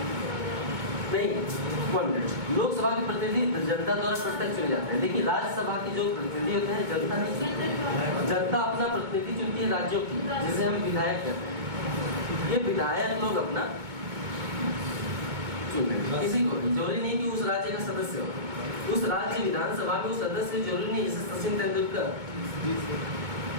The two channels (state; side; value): late; left; 2.2 ms